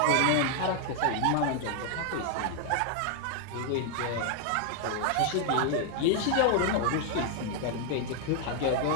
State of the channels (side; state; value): both; different; correlation 0.00